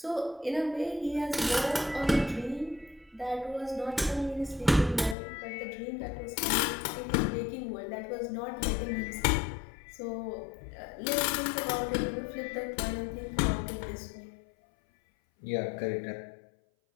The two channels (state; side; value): drops out; right; at 5.2 s